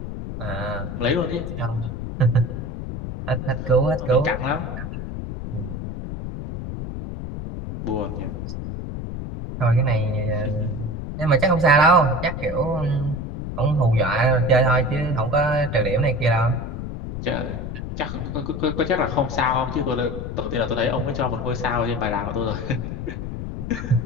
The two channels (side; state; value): left; noise; rumble, 6 dB below the sound